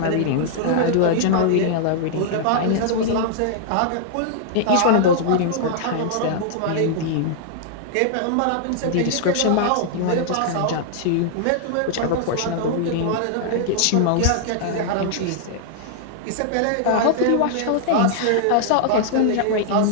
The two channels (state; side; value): different; both; correlation -0.01